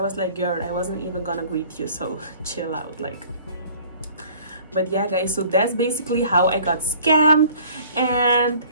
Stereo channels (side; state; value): both; inverted; correlation -0.51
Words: like, girl, I wasn't even gonna greet you, so chill out. Like, but yeah guys, so that's basically how I got scammed. And